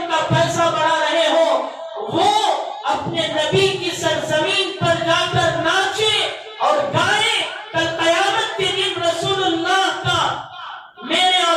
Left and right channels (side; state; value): both; identical; correlation 1.00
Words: کا پیسہ بڑھا رہے ہو، وہ اپنے نبی کی سرزمین پر جا کر ناچے اور گائیں، کل قیامت کے دن رسول اللہ کا میرے